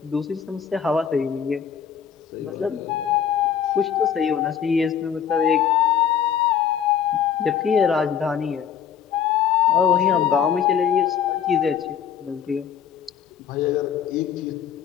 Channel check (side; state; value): right; quieter; 8.3 dB